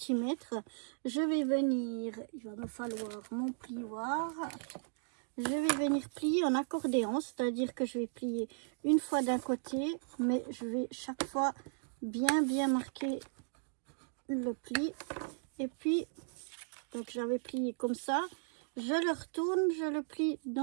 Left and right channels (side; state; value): left; silent; digital silence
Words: Je vais venir, il va me falloir mon plioir. Je vais venir plier en accordéon, c'est-à-dire que je vais plier une fois d'un côté, mais je vais chaque fois bien marquer le pli. Et puis, donc j'avais plié comme ça, je le retourne, je le plie